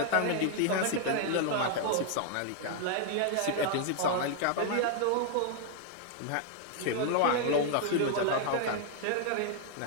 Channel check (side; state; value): both; different; correlation 0.00